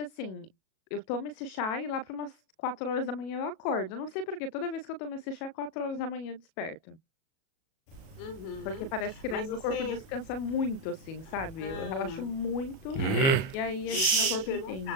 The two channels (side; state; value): right; late; 37 ms